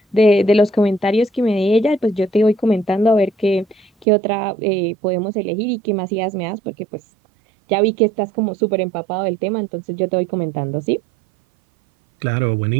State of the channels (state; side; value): drops out; left; at 4.0 s